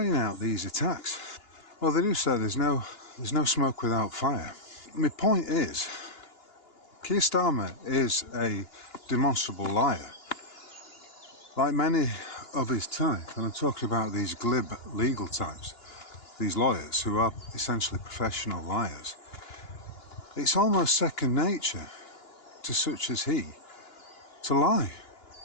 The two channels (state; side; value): late; right; 2.9 ms